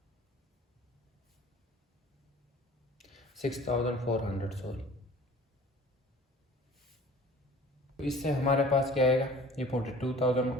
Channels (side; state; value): both; normal; correlation 0.46